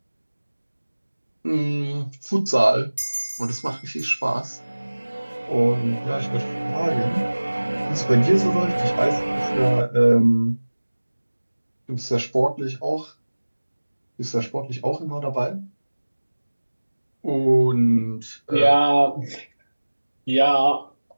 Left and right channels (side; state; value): both; inverted; correlation -1.00